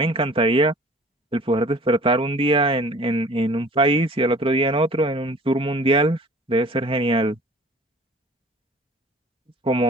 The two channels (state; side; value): normal; both; correlation 0.48